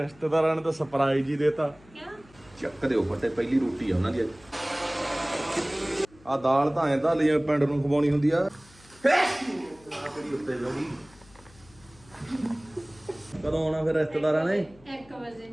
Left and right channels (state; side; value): noise; left; hum, 26 dB below the sound